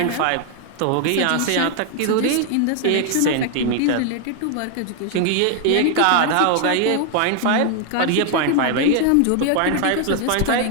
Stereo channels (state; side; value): different; both; correlation 0.00